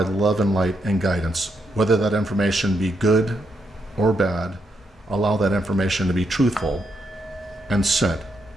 love and light and guidance. Whether that information be good or bad, allow that information to be truthful and sent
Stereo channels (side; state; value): both; normal; correlation 0.80